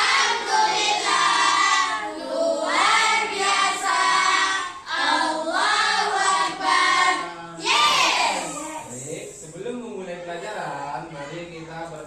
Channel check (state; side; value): identical; both; correlation 1.00